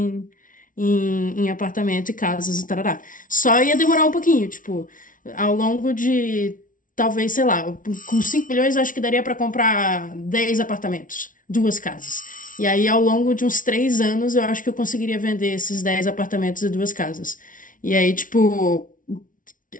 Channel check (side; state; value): right; late; 0.38 ms